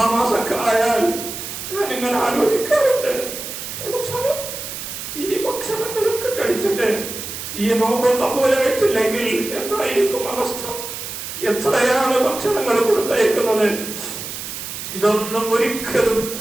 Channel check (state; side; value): noise; right; hiss, 8 dB below the sound